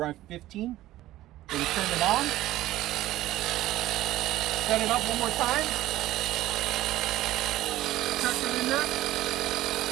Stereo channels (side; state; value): left; quieter; 15.3 dB